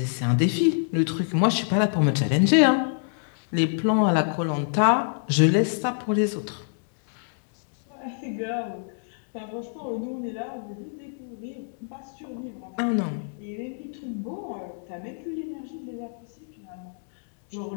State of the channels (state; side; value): silent; right; digital silence